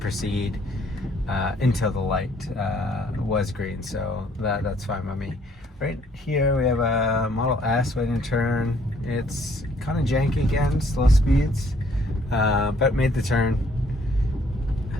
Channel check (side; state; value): both; normal; correlation 0.64